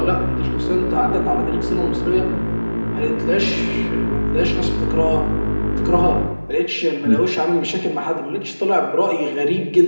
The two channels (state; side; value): inverted; both; correlation -1.00